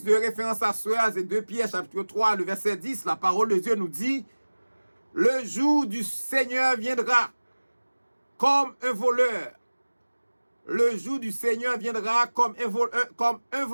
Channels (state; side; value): inverted; both; correlation -1.00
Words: de référence à cela, c'est 2 Pierre, chapitre 3, le verset 10, la parole de Dieu nous dit, le jour du Seigneur viendra comme un voleur. Le jour du Seigneur viendra comme un